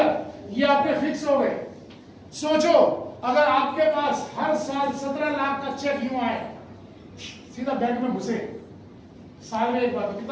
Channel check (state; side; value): identical; both; correlation 1.00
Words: ये आपके फिक्स हो गए। सोचो अगर आपके पास हर साल 17 लाख का चेक यूं आए, सीधा बैंक में घुसे साल में एक बार, तो